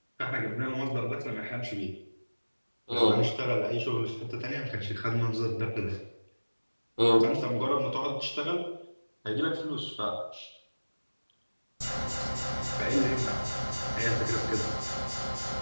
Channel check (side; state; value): both; inverted; correlation -1.00